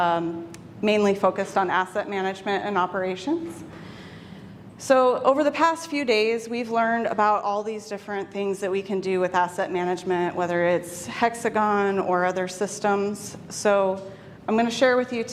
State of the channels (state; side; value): identical; both; correlation 1.00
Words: mainly focused on asset management and operations. So over the past few days, we've learned about all these different things that we can do with asset management, whether it's HxGN or other systems. So I'm going to share with you